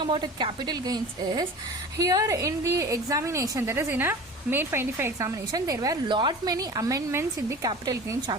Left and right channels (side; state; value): both; normal; correlation 0.38